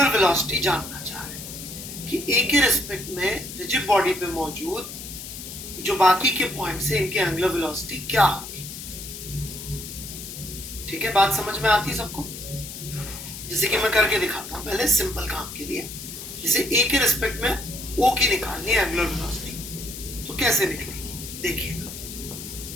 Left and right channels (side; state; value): left; noise; hiss, 10 dB below the sound